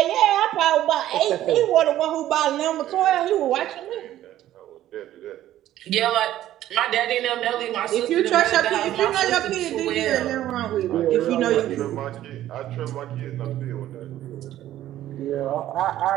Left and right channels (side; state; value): left; quieter; 13.2 dB